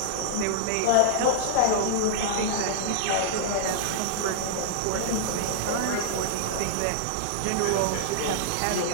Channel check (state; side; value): different; both; correlation -0.01